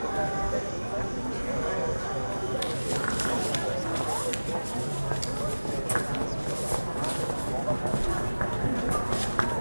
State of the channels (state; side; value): inverted; both; correlation -1.00